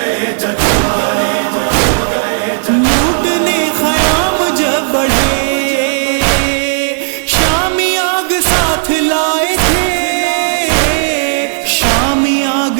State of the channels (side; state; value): left; silent; digital silence